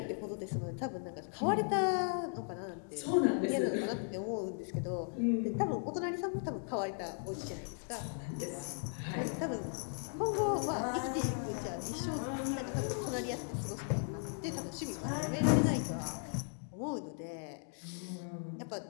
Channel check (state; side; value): silent; right; 53 dB below the other